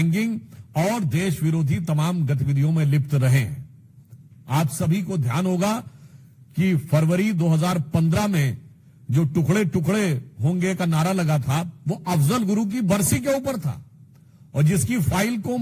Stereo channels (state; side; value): identical; both; correlation 1.00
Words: और देश विरोधी तमाम गतिविधियों में लिप्त रहे हैं। आप सभी को ध्यान होगा कि फरवरी 2015 में जो टुकड़े टुकड़े होंगे का नारा लगा था, वो अफजल गुरु की बरसी के ऊपर था और जिसकी फाइल को